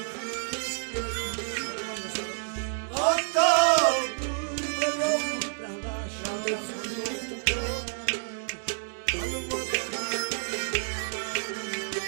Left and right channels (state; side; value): silent; left; 59 dB below the other